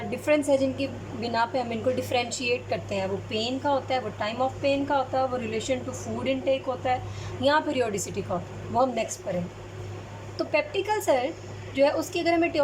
डिफरेंस है जिनकी बिना पे हम इनको डिफ्रेंशिएट करते हैं। वो पेन का होता है, वो टाइम ऑफ पेन का होता है, वो रिलेशन टू फूड इनटेक होता है, या पीरियोडिसिटी का होता है। वो हम नेक्स्ट पढ़ें। तो पेप्टिक अल्सर जो है उसकी अगर हम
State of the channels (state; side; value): identical; both; correlation 1.00